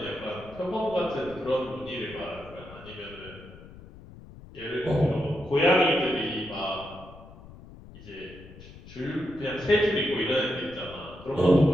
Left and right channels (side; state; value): left; noise; rumble, 18 dB below the sound